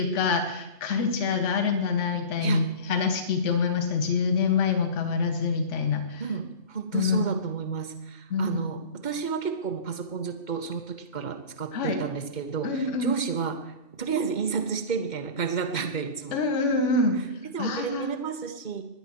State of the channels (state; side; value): late; right; 2.1 ms